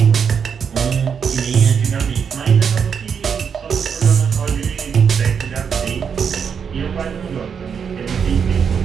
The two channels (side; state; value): left; quieter; 6.9 dB